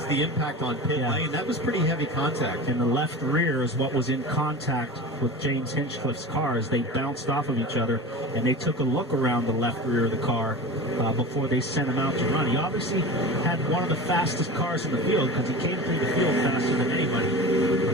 the impact on pit lane. That was pretty heavy contact. And the left rear is what was in contact with James Hinchcliffe's car as they bounced off of each other, and they took a look around the left rear of the car before they sent him out to run. He obviously had one of the fastest cars in the field because he came through the field faster than anybody,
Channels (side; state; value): both; normal; correlation 0.32